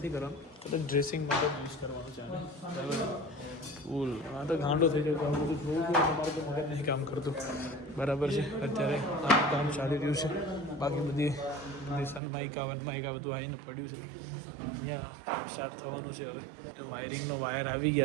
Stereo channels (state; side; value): drops out; left; at 12.2 s